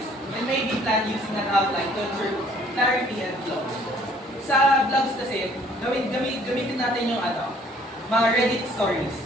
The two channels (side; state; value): both; normal; correlation 0.59